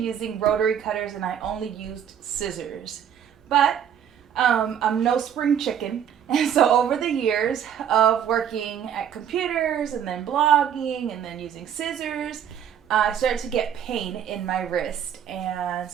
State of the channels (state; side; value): quieter; left; 8.9 dB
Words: rotary cutters and I only used scissors. But I'm no spring chicken, and so over the years of working at computers and then blogging and then using scissors, I started to get pain in my wrist, and